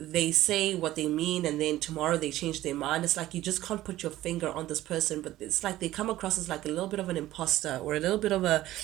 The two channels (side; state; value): left; quieter; 15.1 dB